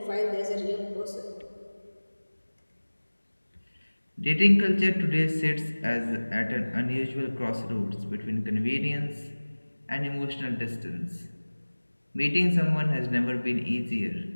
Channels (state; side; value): inverted; both; correlation -1.00